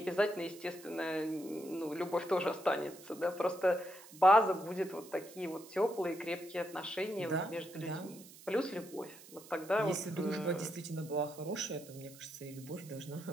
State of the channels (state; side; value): noise; right; hiss, 19 dB below the sound